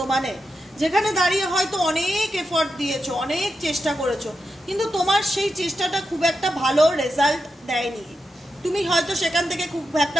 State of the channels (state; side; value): normal; both; correlation 0.87